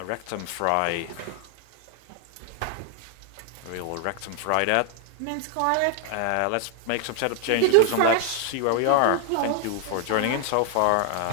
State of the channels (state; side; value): different; both; correlation 0.00